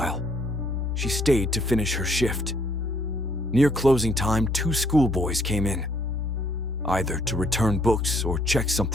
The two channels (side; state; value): both; normal; correlation 0.67